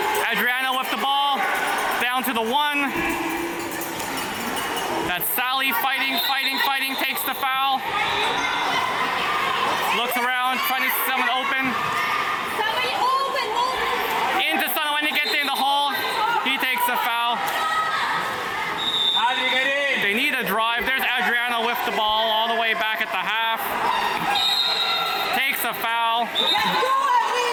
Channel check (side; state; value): both; identical; correlation 1.00